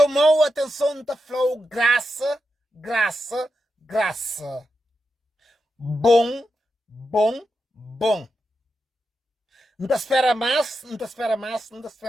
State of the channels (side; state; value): both; normal; correlation 0.88